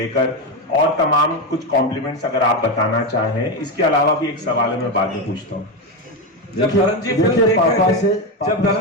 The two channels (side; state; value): both; normal; correlation 0.12